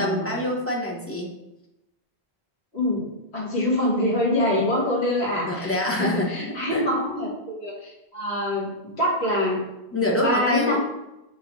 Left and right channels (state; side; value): normal; both; correlation -0.09